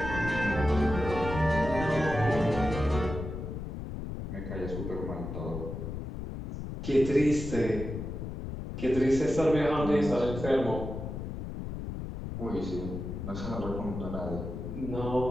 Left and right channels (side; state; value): left; noise; rumble, 6 dB below the sound